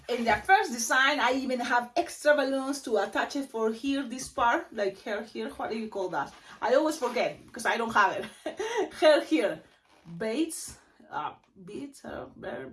in the first design, I even have extra balloons to attach it for here, this part, like hair here. What do you call that? I always forget because I don't have it. Hair here, beads,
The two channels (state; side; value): identical; both; correlation 1.00